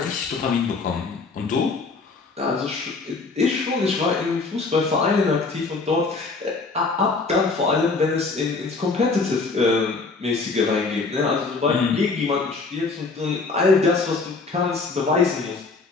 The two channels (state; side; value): quieter; right; 4.0 dB